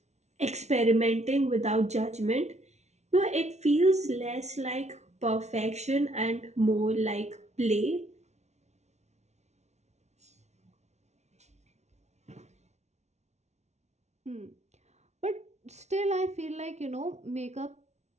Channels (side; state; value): left; late; 0.32 ms